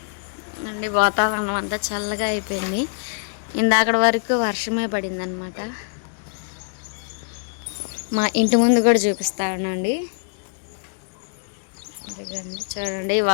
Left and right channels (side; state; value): right; silent; digital silence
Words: అండి. వాతావరణం అంతా చల్లగా అయిపోయింది. ఇందాకటి వరకు వర్షమే పడింది అనమాట. మా ఇంటి ముందు కూడా చూపిస్తా ఉన్నాండి. చూడండి